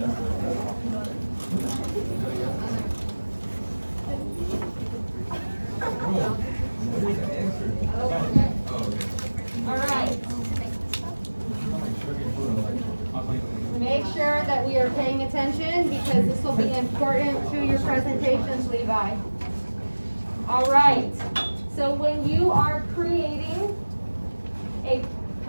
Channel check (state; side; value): inverted; both; correlation -1.00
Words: All right. Make sure that we are paying attention because this will be important to your presentations, Levi. All right. So when you are creating a